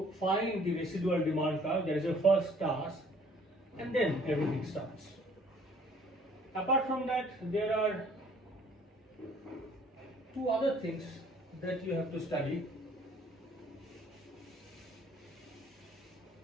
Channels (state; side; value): normal; both; correlation 0.58